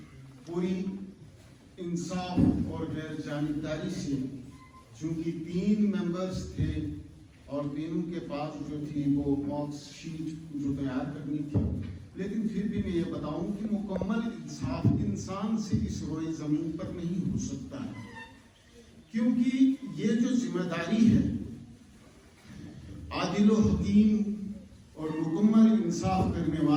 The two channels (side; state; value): both; identical; correlation 1.00